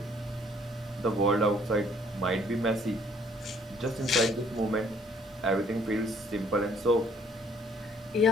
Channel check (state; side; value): normal; both; correlation 0.61